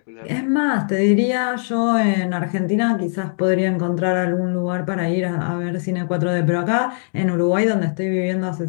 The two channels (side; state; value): right; silent; digital silence